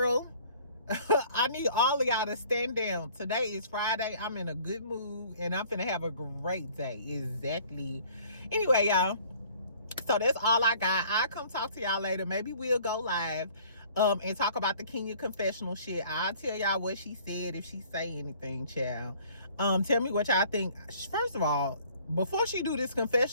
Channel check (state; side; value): inverted; both; correlation -0.54